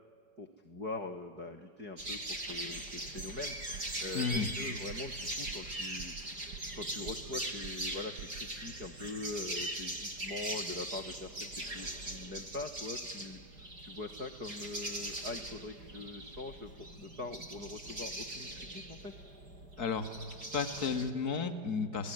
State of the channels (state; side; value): late; left; 4.9 ms